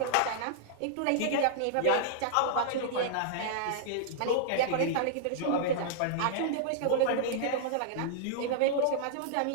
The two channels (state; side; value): different; both; correlation -0.01